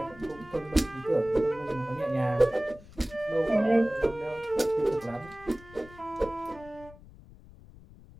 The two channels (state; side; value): noise; left; rumble, 20 dB below the sound